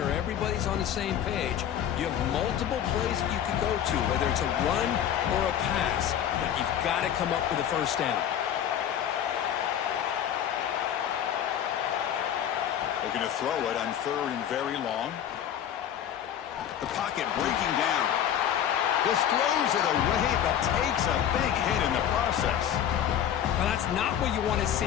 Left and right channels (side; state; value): right; quieter; 9.9 dB